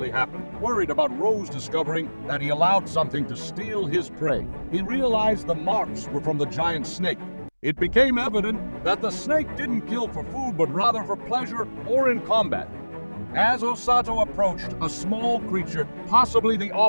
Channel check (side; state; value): both; inverted; correlation -1.00